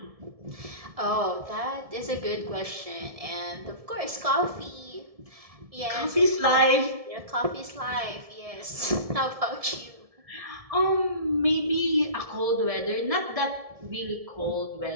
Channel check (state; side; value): late; left; 1.7 ms